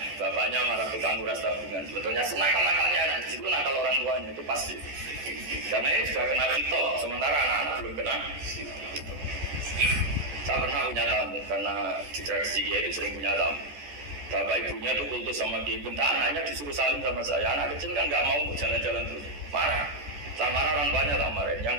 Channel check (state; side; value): late; left; 14 ms